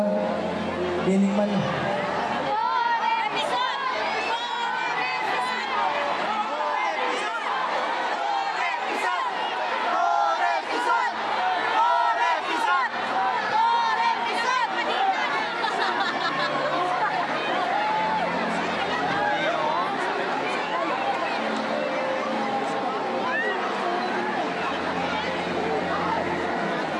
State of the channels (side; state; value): both; identical; correlation 1.00